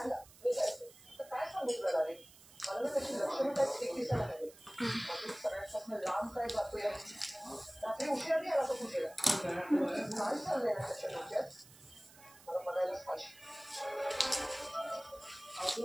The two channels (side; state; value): right; noise; hiss, 22 dB below the sound